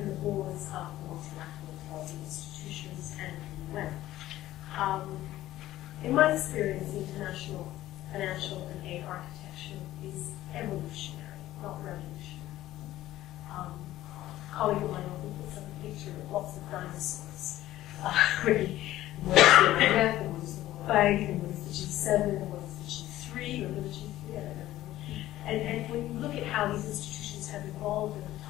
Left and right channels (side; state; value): right; quieter; 14.7 dB